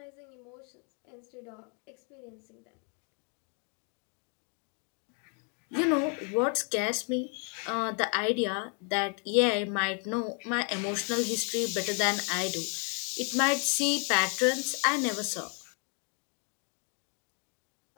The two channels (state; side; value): quieter; right; 39.5 dB